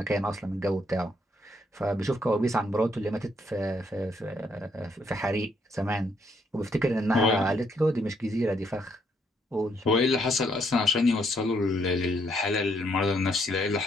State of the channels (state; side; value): normal; both; correlation 0.72